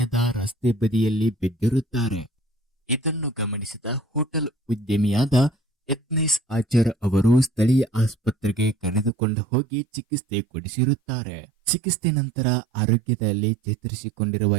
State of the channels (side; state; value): left; drops out; at 9.1 s